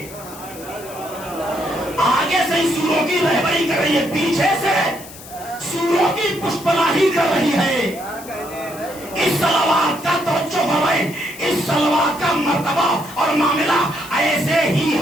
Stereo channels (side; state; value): left; noise; hiss, 17 dB below the sound